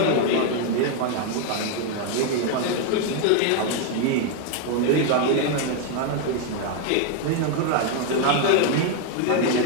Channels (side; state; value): both; different; correlation 0.01